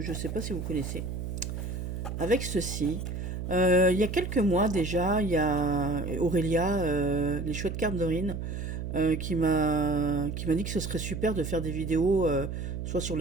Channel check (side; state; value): right; noise; hum, 5 dB below the sound